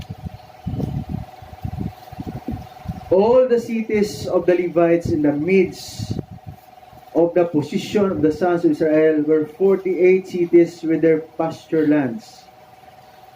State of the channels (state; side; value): identical; both; correlation 1.00